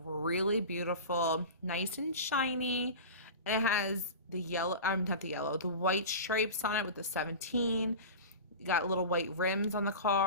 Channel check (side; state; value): both; inverted; correlation -0.30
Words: beautiful. Nice and shiny. And it has the yellow, not the yellow, the white stripes on it with the 17. You got little white rims on the